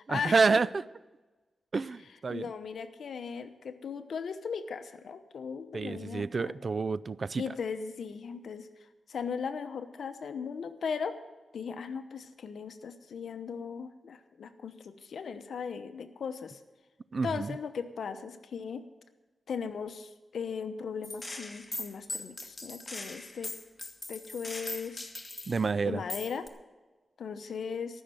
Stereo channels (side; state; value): both; normal; correlation 0.84